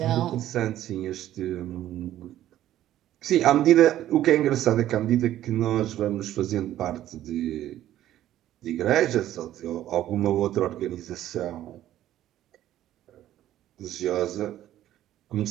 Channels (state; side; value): quieter; left; 12.9 dB